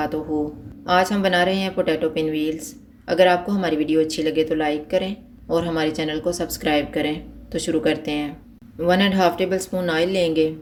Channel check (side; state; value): both; identical; correlation 1.00